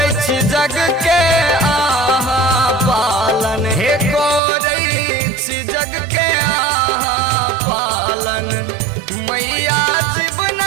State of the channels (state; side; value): drops out; left; at 4.4 s